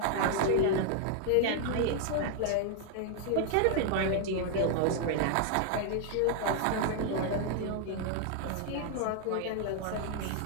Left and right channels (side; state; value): both; different; correlation 0.00